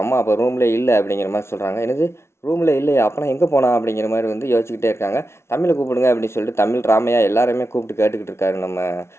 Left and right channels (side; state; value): right; late; 0.13 ms